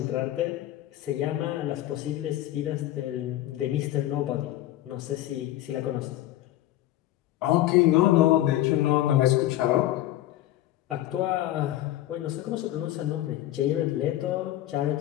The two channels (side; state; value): right; quieter; 14.3 dB